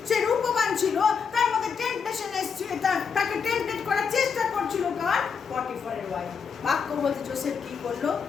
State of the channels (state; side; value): quieter; right; 6.2 dB